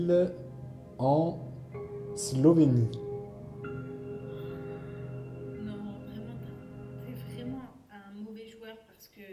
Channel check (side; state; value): both; identical; correlation 1.00